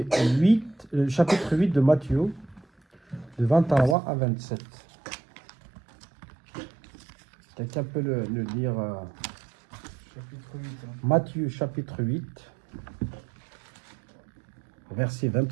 8, le chapitre 8 de Matthieu, de 23 à 27. Quelqu'un peut le lire Chapitre 8. Matthieu chapitre 8, verset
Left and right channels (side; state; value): left; drops out; at 4.0 s